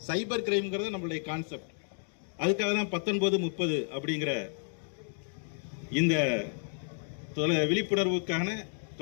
சைபர் கிரைம்ங்கிறது நம்மளுடைய கான்செப்ட். அதுக்காக தான் 1930 அப்படிங்கிற இந்த விழிப்புணர்வுக்கான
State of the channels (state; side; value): silent; right; digital silence